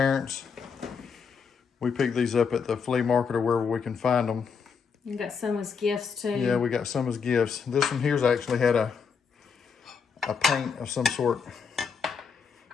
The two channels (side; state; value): right; quieter; 6.0 dB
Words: We picked these up at the flea market or wherever we can find them. You got some as gifts too. Yeah, we got some as gifts. This one here's actually had a paint of some sort